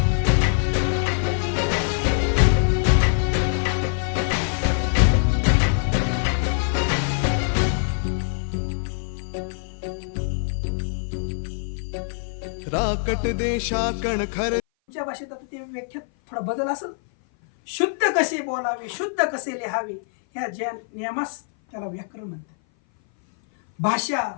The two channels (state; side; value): silent; right; 58 dB below the other